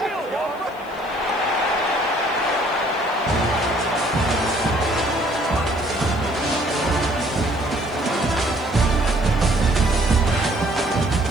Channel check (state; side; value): noise; left; hiss, 28 dB below the sound